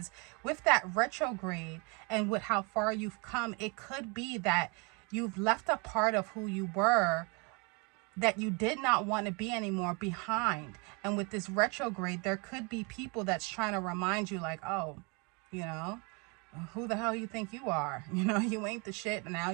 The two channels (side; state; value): left; quieter; 31.4 dB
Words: with that retrograde and with how far you've come, it could be that you've left a part of who you were that you did not want to be anymore behind. And with this retrograde, there could be people that's trying to remind you like, oh, you know, who the hell you think you are? You know, you ain't the shit, and now